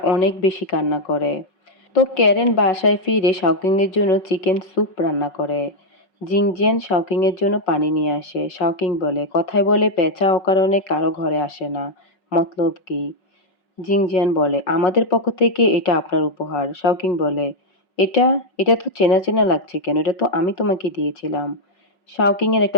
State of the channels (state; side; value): late; right; 5.4 ms